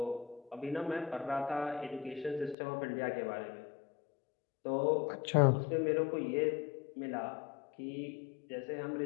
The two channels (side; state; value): right; drops out; at 2.6 s